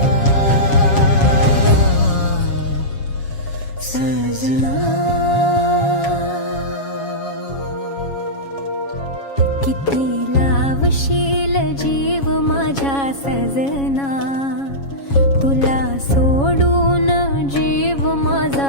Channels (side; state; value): right; late; 7.3 ms